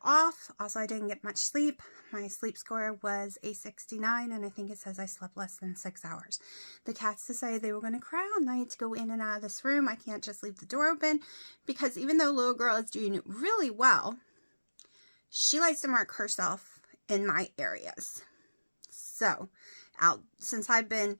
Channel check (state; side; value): inverted; both; correlation -1.00